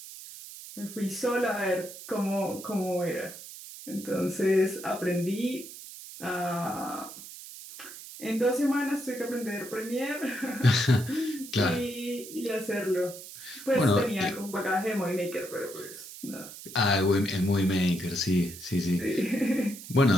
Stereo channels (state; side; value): noise; right; hiss, 14 dB below the sound